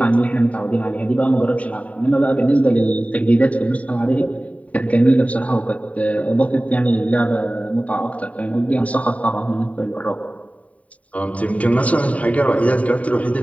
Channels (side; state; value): right; late; 0.068 ms